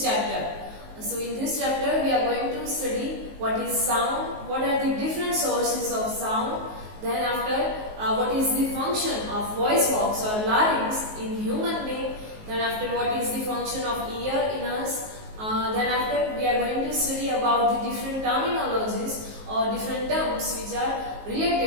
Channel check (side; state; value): left; late; 19 ms